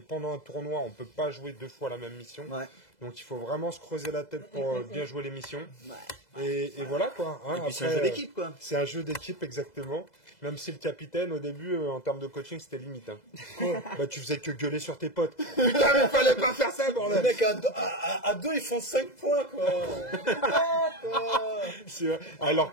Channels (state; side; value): late; right; 2.0 ms